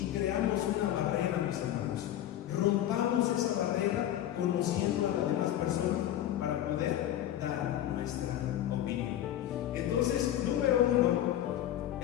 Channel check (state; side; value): quieter; right; 12.2 dB